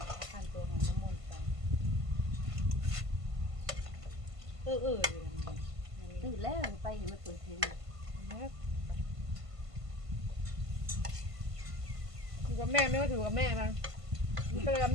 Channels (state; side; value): late; left; 1.5 ms